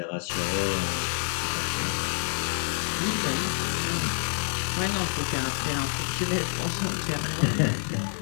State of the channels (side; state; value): right; silent; digital silence